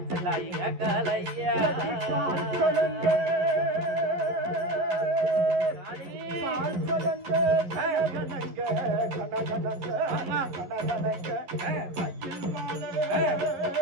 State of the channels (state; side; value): late; left; 11 ms